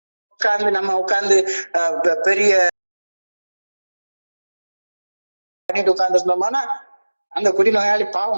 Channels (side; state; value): both; inverted; correlation -1.00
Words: உட்கார்ந்து பெரிய பண்ணிட்டு உட்கார்ந்துருந்தோம்னா அந்த குடிநோயாளி